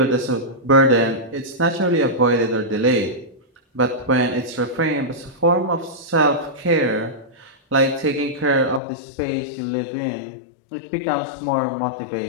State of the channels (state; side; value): drops out; right; at 8.8 s